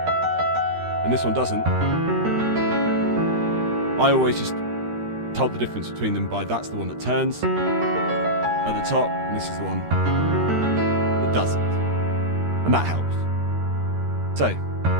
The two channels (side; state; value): left; late; 13 ms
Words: and this one doesn't, I always just told the difference between them by that's the one that turns at the top, and this is the one that doesn't. And that helps. So,